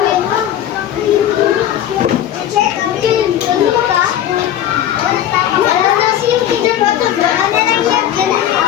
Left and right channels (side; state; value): right; quieter; 11.1 dB